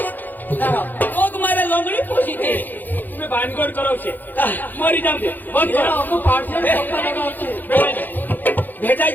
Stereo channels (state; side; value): late; right; 0.086 ms